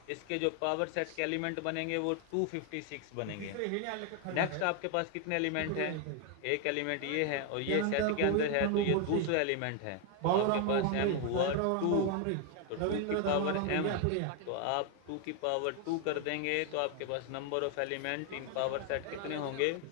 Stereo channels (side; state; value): both; different; correlation 0.00